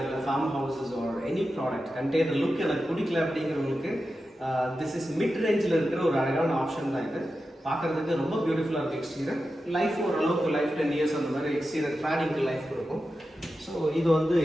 farm houses or any product container look எனக்கு பிடிக்கல அப்படிங்கிறவங்களுக்கு திஸ் இஸ் மிட் ரேஞ்சில் இருக்கிற ஒரு அழகான ஆப்ஷன் தான் இது. பார்க்குறதுக்கு ரொம்ப பியூட்டிஃபுல்லாக இருக்குது எக்ஸ்டீரியர். லைஃப் ஓரளவுக்கு லைஃப் 10 years அந்த மாதிரி எக்ஸ்டீரியர் கிளாடிங்க்கு லைஃப் கொடுக்கும். ஸோ இது வந்து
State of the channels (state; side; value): normal; both; correlation 0.91